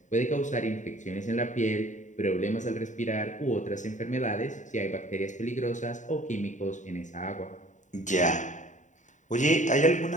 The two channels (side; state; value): right; late; 0.36 ms